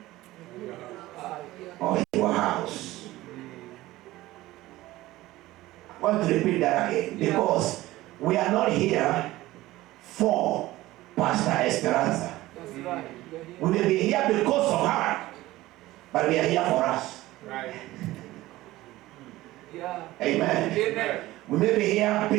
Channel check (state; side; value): quieter; left; 17.3 dB